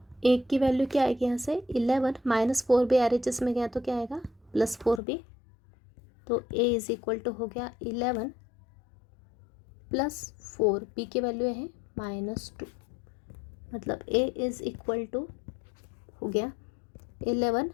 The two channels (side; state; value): right; drops out; at 5.0 s